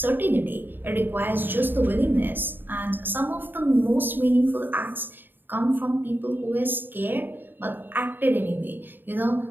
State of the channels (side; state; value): left; late; 0.094 ms